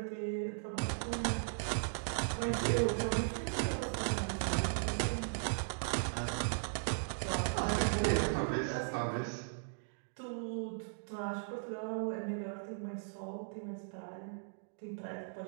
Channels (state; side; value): silent; left; digital silence